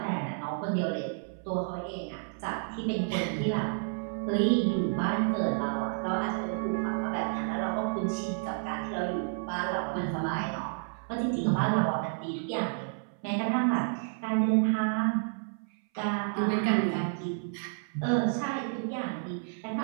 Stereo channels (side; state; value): left; silent; 57 dB below the other